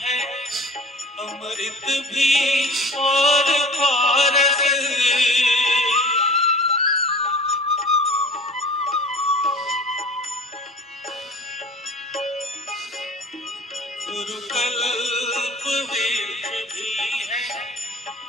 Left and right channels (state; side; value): normal; both; correlation 0.41